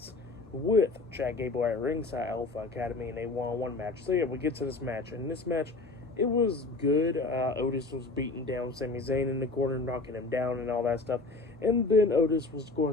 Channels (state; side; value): quieter; right; 3.5 dB